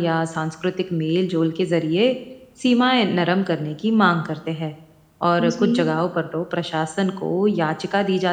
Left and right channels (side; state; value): both; identical; correlation 1.00